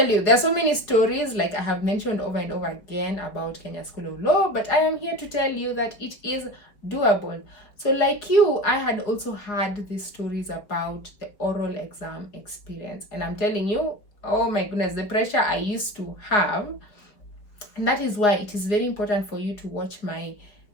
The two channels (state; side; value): late; right; 4.7 ms